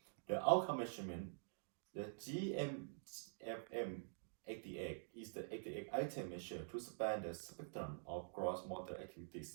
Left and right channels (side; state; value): left; silent; digital silence